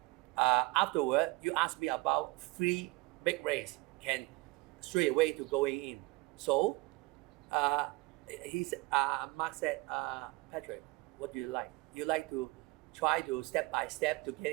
afterward, you asked me about 3 big race can straight away to going in. So Mark said, Patrick, what do you like? You like to try to step by step to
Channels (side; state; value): left; quieter; 23.0 dB